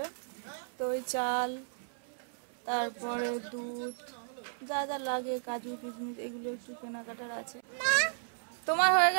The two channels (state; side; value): silent; left; 55 dB below the other